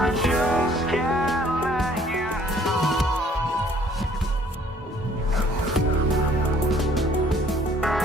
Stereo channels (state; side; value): normal; both; correlation 0.59